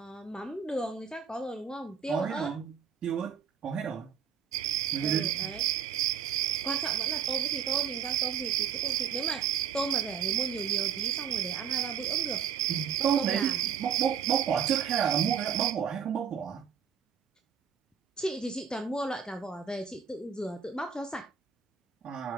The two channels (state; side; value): quieter; left; 7.6 dB